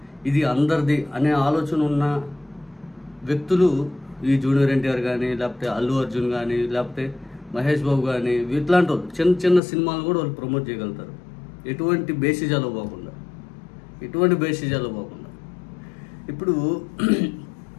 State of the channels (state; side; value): drops out; right; at 9.6 s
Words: ఇది అందరిది అనే ఆలోచన ఉన్న వ్యక్తులు ఈ జూనియర్ ఎన్టీఆర్ కానీ, లేకపోతే అల్లు అర్జున్ కానీ, లేకపోతే మహేష్ బాబు కానీ, ఇట్లాంటి వాళ్ళు చిన్న చిన్న సినిమాలు కూడా వాళ్ళు ప్రమోట్ చేయగలుగుతారు. ఎటువంటి బేసిజాలు పోకుండా. ఇప్పుడు